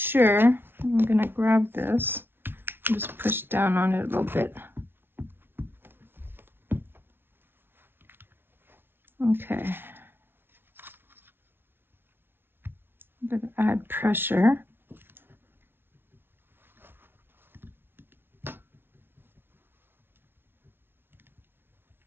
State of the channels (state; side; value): late; left; 0.11 ms